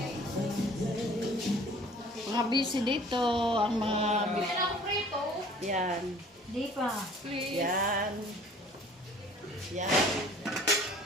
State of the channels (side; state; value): both; normal; correlation 0.51